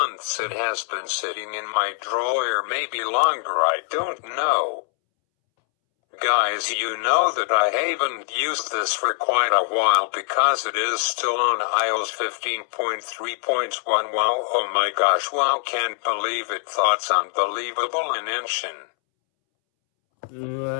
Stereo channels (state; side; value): silent; right; 63 dB below the other